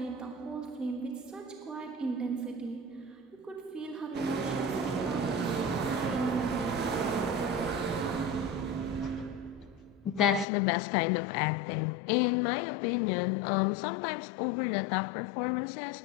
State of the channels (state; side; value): drops out; right; at 10.5 s